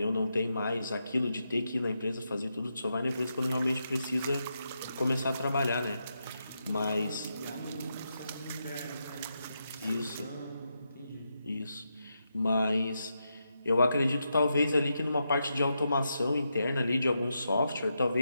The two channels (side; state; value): both; inverted; correlation -0.85